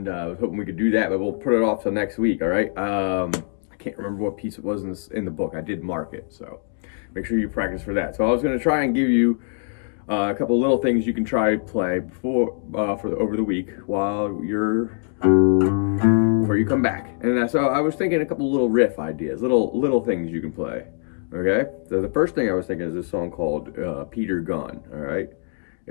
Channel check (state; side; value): silent; right; 55 dB below the other